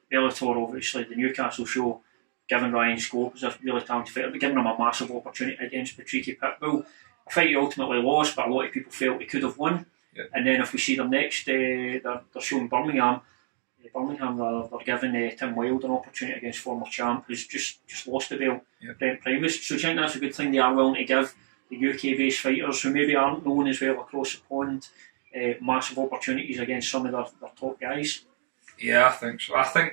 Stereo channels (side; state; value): left; silent; digital silence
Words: Bellator, obviously the Newcastle show, giving Ryan Scope as a really talented fighter, but giving him a massive opportunity against Patricky Pitbull. A fight he ultimately lost, but a lot of people felt he could have won. Yeah. And then if we see them next, they're showing Birmingham. They're giving Tim Wilde an opportunity against former champ who's just lost the belt, Brent Primus. So do you think that's a good thing they are willing to give the UK-based fighters who maybe aren't known as well across the pond massive opportunities against some of their top guys? Yeah, I think so. I